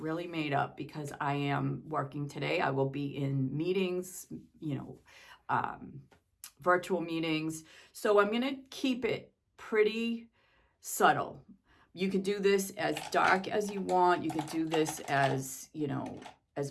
made up because I am working today. I will be in meetings, you know, virtual meetings. So I'm going to keep it pretty subtle. You can do this as dark as you want. You can do this as, you know,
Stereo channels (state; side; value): identical; both; correlation 1.00